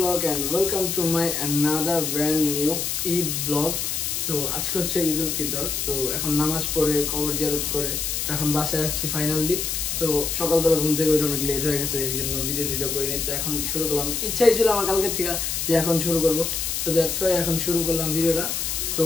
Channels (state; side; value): noise; left; hiss, 1 dB below the sound